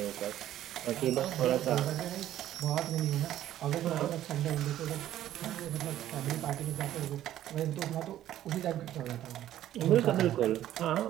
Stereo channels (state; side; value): quieter; left; 12.6 dB